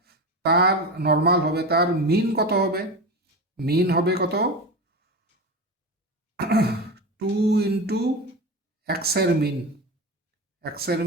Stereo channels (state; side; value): normal; both; correlation 0.23